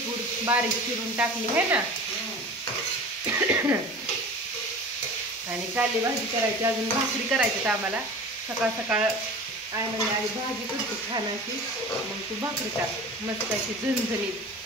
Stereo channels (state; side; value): normal; both; correlation 0.37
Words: बारीक चिरून टाकली है ना. आणि काली भाजी करायची. अजून भाकरी करायची तर आम्हाला. सकाळ सकाळ आई म्हणजे आई भाजी करते छान अशी. मग तू भाकरी टाक मस्त अशी झणझणीत